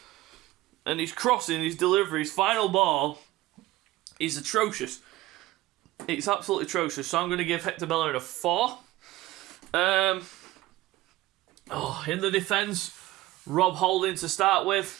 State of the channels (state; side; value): quieter; left; 17.5 dB